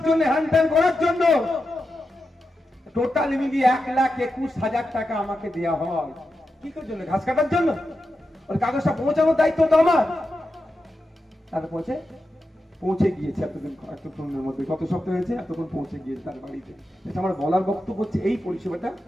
জন্য, হ্যান্ডেল করার জন্য টোটাল মিলিয়ে 1,21,000 টাকা আমাকে দেওয়া হয়। কি করার জন্য? ঘাস কাটার জন্য। ওর কাগজটা পৌঁছানোর দায়িত্ব তো আমার। তার পৌঁছে গিয়েছে এতক্ষণের মধ্যে, কত সপ্তাহ হয়েছে, এতক্ষণ পৌঁছে গিয়েছে তার বাড়িতে। আমার বলার বক্তব্য হচ্ছে এই পরিষেবাটা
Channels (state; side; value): normal; both; correlation 0.89